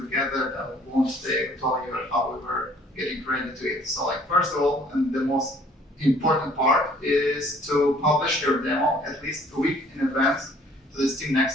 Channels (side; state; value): both; normal; correlation 0.57